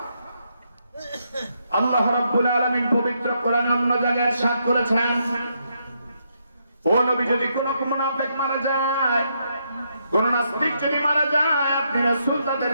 আল্লাহ রাব্বুল আলামিন পবিত্র কোরআনে অন্য জায়গায় ইরশাদ করেছেন, ও নবী, যদি কোন মুনাফিক মারা যায়, কোন নাস্তিক যদি মারা যায়, আপনি রাসূল তাদের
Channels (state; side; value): inverted; both; correlation -0.78